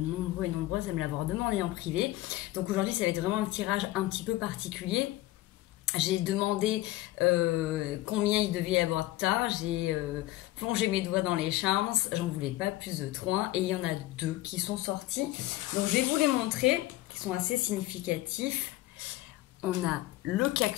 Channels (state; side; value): quieter; right; 16.9 dB